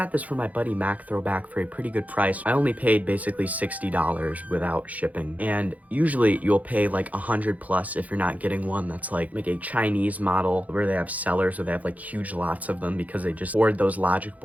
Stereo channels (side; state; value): left; late; 0.074 ms